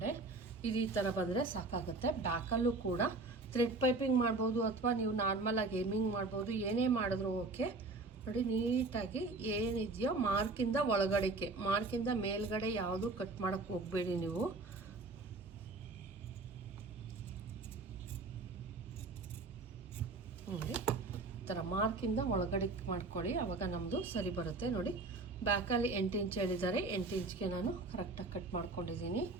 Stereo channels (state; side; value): quieter; left; 3.4 dB